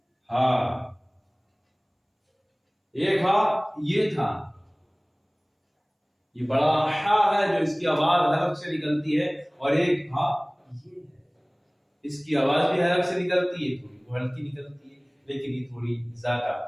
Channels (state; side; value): identical; both; correlation 1.00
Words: हा। एक हा ये था, ये बड़ा हा है जो इसकी आवाज हलक से निकलती है, और एक हा ये है, इसकी आवाज भी हलक से निकलती है, थोड़ी हल्की निकलती है, लेकिन ये थोड़ी ज्यादा